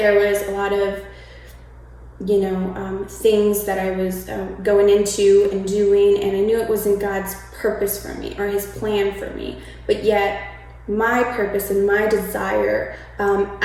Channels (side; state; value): both; identical; correlation 1.00